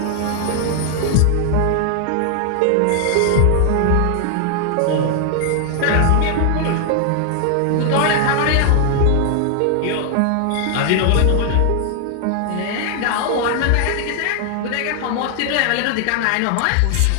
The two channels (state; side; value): different; both; correlation 0.00